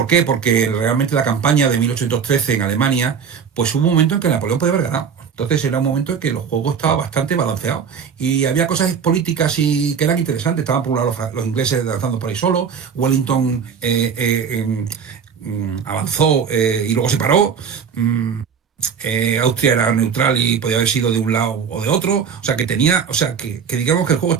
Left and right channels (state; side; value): quieter; left; 6.7 dB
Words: qué? Porque realmente la campaña de 1813 en Alemania, pues hubo un momento en que Napoleón podía haber ganado. Entonces era un momento en que los juegos estaban bastante balanceados y había cosas políticas y que eran interesantes. Estaban por un lado los ingleses lanzando por ahí solo, Wellington avanzó y luego se paró. Mm, Austria era neutral y podía haber sido de un lado o de otro, o sea que tenía, o sea que digamos que el juego